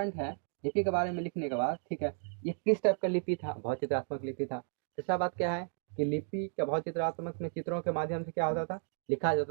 है, लिपि के बारे में लिखने के बाद, ठीक है, ये किस टाइप का लिपि था, भाव चित्रात्मक लिपि था। तीसरा बात क्या है कि लिपि का भाव चित्रात्मक में चित्रों के माध्यम से क्या होता था, लिखा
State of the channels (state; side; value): silent; left; 55 dB below the other